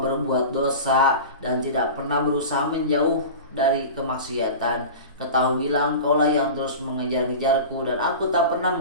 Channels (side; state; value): both; inverted; correlation -0.32